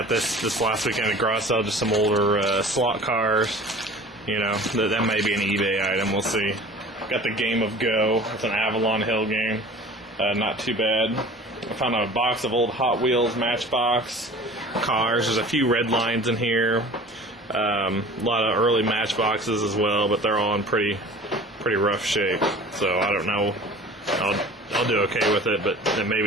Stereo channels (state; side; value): normal; both; correlation 0.43